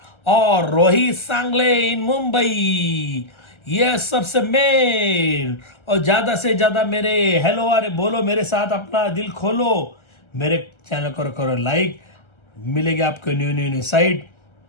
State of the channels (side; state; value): right; late; 1.3 ms